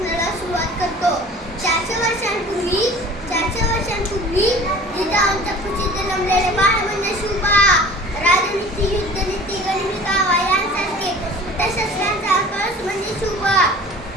सुरुवात करतो. 400 वर्षांपूर्वी जिथे आमच्या कुशीत जन्मलेले बाळ म्हणजे शुभा. राजनीती, युद्धनीती, गनिमी कावा यांसारखे शस्त्रांचा कळस म्हणजे शुभा.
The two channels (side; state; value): both; normal; correlation 0.44